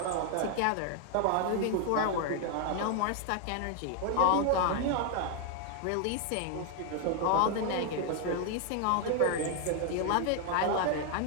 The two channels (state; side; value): different; both; correlation 0.00